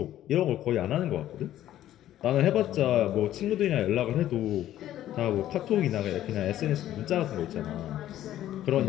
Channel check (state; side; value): quieter; right; 12.7 dB